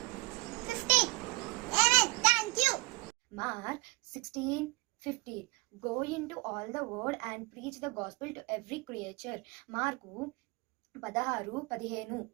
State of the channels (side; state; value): left; quieter; 24.8 dB